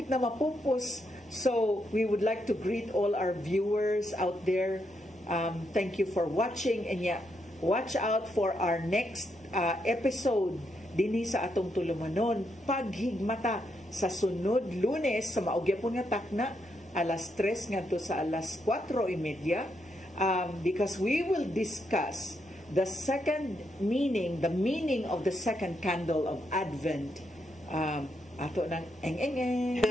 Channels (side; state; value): both; normal; correlation 0.79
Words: na mapupos. So we would like to greet all our viewers out there. Thank you for watching, and watch out for our next episode dinhi sa atong tulumanon, paghigmata sa sunod Lunes sa maugyapon nga takna alas 3 ngadto sa alas 4:30, because we will discuss the meaning of the second candle of Advent. Ato ng eng-eng-eng.